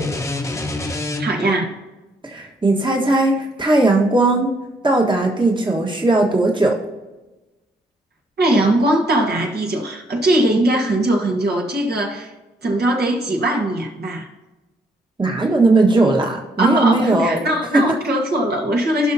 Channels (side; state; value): both; normal; correlation 0.70